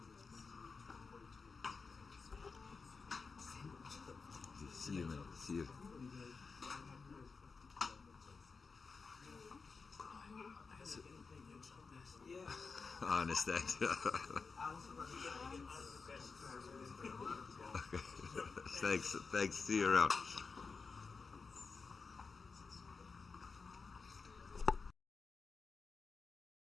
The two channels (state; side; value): quieter; right; 4.7 dB